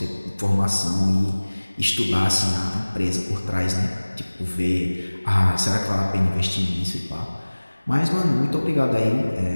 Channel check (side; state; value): both; inverted; correlation -1.00